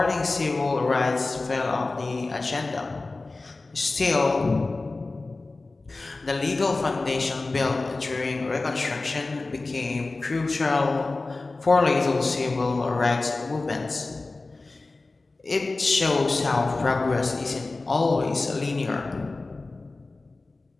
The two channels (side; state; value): right; quieter; 3.4 dB